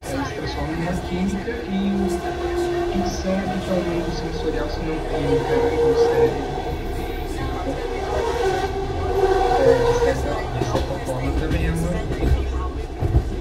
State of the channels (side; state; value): both; identical; correlation 1.00